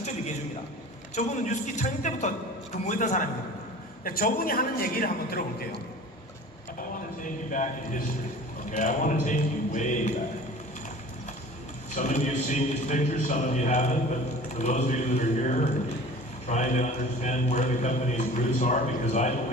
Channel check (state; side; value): normal; both; correlation 0.42